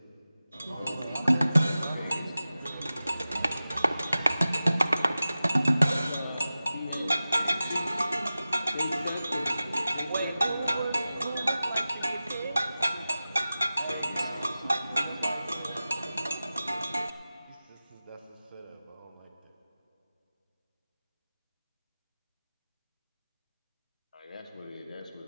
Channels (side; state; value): both; inverted; correlation -0.95